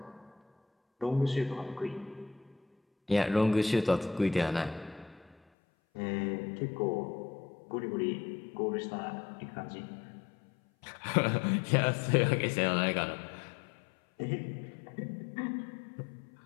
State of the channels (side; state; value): right; drops out; at 5.4 s